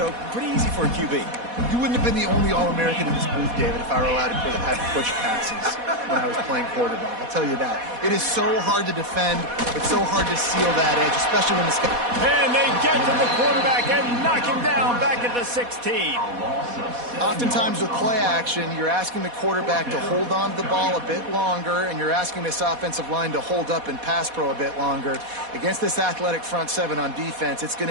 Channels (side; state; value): left; late; 4.1 ms